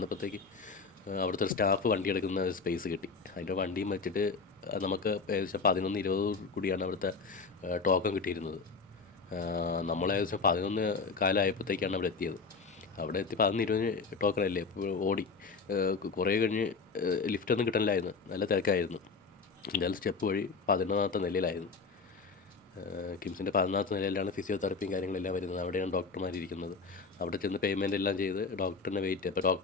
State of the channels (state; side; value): quieter; right; 4.7 dB